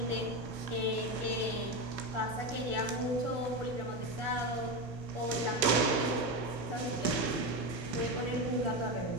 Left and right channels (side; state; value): left; late; 1.4 ms